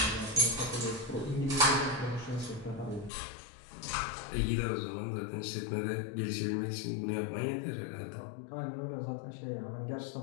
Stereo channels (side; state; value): right; drops out; at 3.1 s